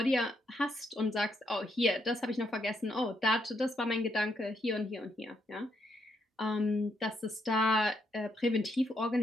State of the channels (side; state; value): both; normal; correlation 0.76